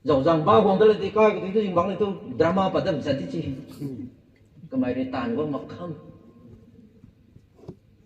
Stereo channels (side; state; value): both; identical; correlation 1.00